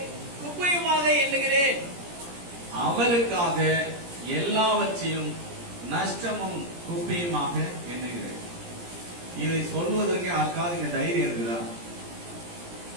குப்பையுமாக எண்ணுகிறேன். அவருக்காக எல்லாவற்றையும் நஷ்டமும் குப்பையுமாக எண்ணுகிறேன். இதை சொல்வதற்கு யாருக்காவது இங்க தைரியம் இருக்குதா?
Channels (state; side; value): late; left; 17 ms